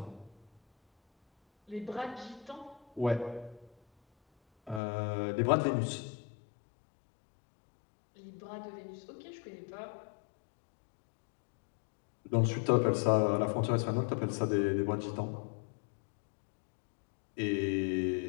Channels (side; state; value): right; drops out; at 4.8 s